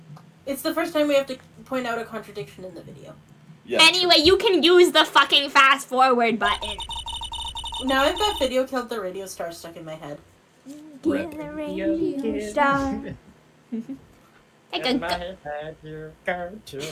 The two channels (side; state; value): both; identical; correlation 1.00